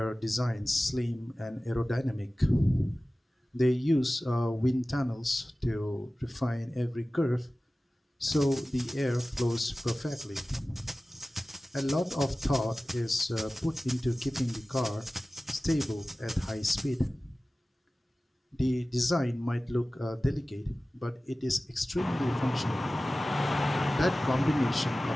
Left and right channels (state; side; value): normal; both; correlation 0.97